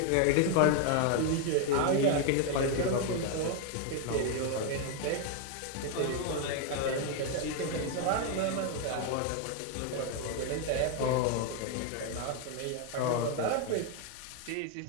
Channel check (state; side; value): different; both; correlation 0.01